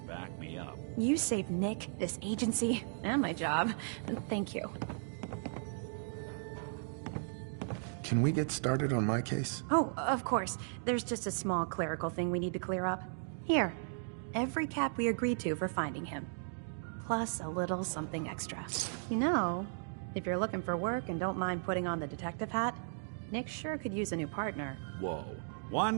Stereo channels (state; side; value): silent; left; digital silence